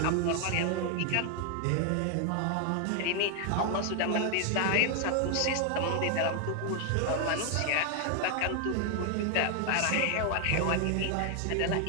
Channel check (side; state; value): both; different; correlation 0.00